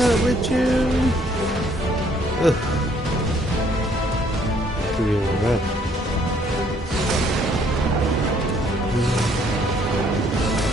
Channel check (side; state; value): both; normal; correlation 0.64